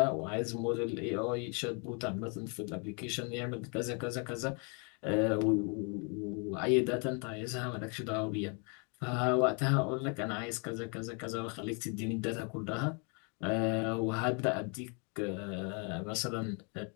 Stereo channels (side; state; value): right; quieter; 36.3 dB